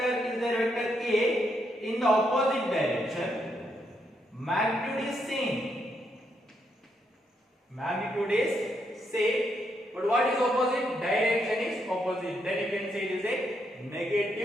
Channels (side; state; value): both; normal; correlation 0.78